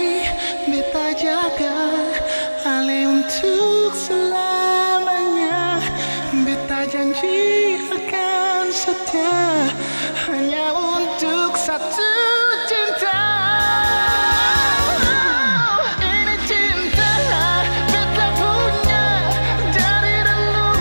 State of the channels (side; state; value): both; inverted; correlation -1.00